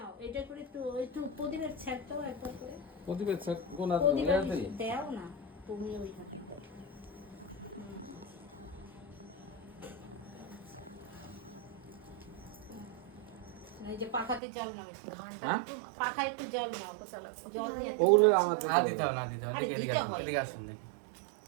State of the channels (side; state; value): left; drops out; at 14.4 s